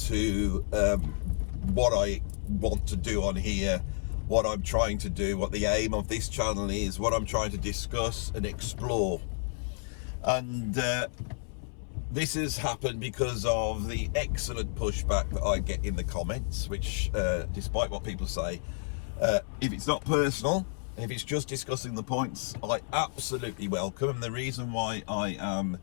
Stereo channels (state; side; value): silent; right; 57 dB below the other